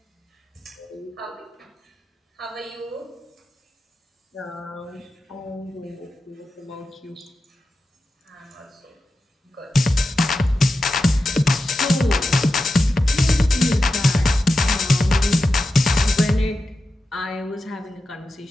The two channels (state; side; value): normal; both; correlation 0.91